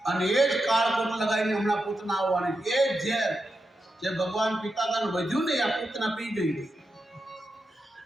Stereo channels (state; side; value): normal; both; correlation 0.88